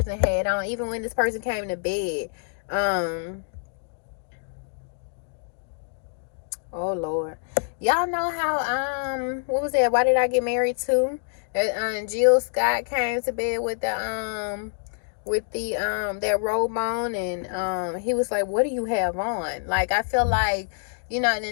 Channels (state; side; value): silent; right; digital silence